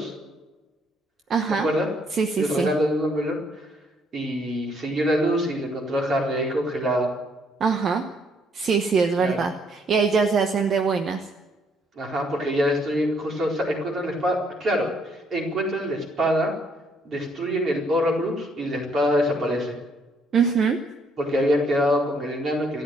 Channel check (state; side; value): normal; both; correlation 0.69